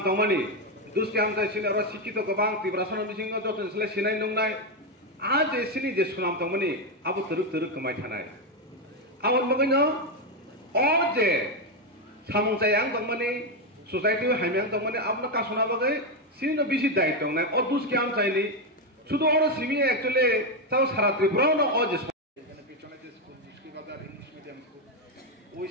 tongmani duski amta sini ro sikito gobang tibrasana bisingo joton sele sinai nongnai a je sini je sunam tongmani abu teruk kamai thanai awon bagino o je samungsayang tongmani society haimyang tongmani abna kasona bagai sini bisi dai tongnai o dus kiam chaini শুধু ওরা Simi actually তাও সারা ত্রিপুরাও না ও যে এখানে পিছনে যে school দুষ্কি বাজার English medium school ওই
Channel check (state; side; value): normal; both; correlation 0.06